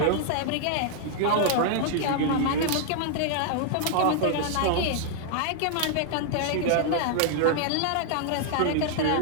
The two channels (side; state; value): both; different; correlation -0.01